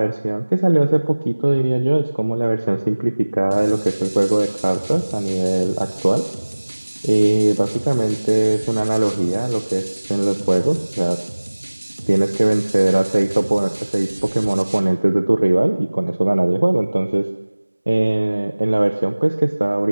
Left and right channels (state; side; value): inverted; both; correlation -1.00